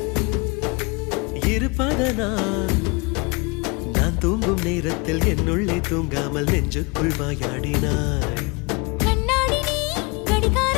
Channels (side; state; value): right; quieter; 29.1 dB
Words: இருப்பதனால் நான் தூங்கும் நேரத்தில் என்னுள்ளே தூங்காமல் நெஞ்சுக்குள் வாயாடினாய். கண்ணாடி நீ